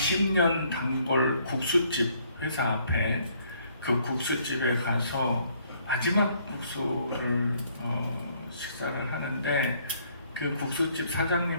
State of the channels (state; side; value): inverted; both; correlation -0.65